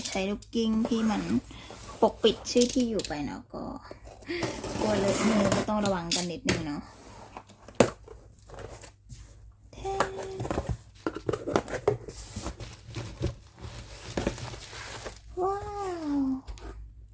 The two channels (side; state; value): both; identical; correlation 1.00